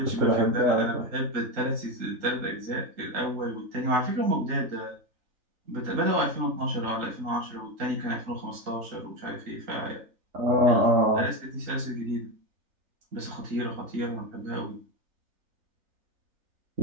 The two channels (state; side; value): late; left; 3.9 ms